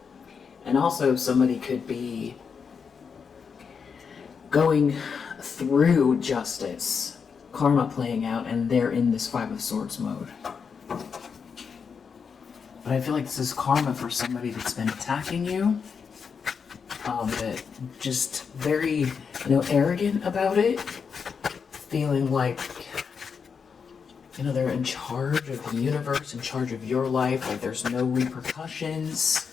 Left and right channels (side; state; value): right; quieter; 6.1 dB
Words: And also somebody could be going through justice, karma playing out, and they're in this Five of Swords mode. But I feel like this is karma for somebody that's been attacking you. That just very, arrogant about it, feeling like, they're in charge of the universe, in charge of your life, like there's no repercussions